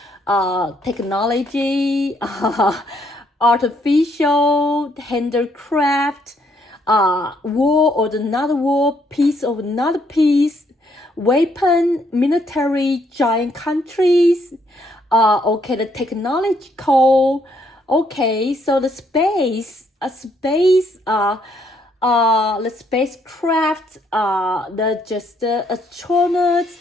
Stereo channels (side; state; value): both; normal; correlation 0.71